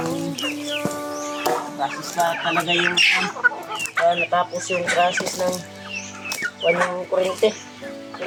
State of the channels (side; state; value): both; identical; correlation 1.00